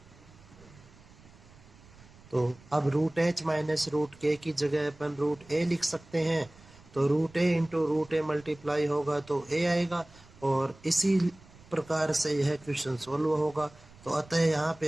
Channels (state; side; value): noise; right; rumble, 24 dB below the sound